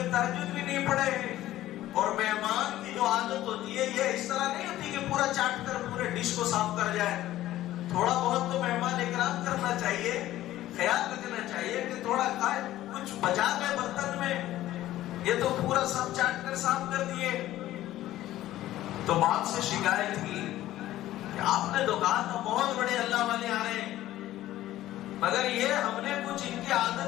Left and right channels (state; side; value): quieter; right; 14.5 dB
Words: تہجد بھی نہیں پڑھے. اور مہمان کی جو عادت ہوتی ہے یہ اس طرح نہیں ہوتی کہ پورا چاٹ کر پورے ڈش کو صاف کر جائے. تھوڑا بہت تو مہمان اکرام کرنا چاہیے، خیال رکھنا چاہیے کہ تھوڑا کھائے، کچھ بچا گئے برتن میں، یہ تو پورا سب چاٹ کر صاف کر دیے. تو باپ سے شکایت کی کہ آپ نے تو کہا تھا بہت بڑے اللہ والے آ رہے ہیں، مگر یہ ہم نے کچھ ان کی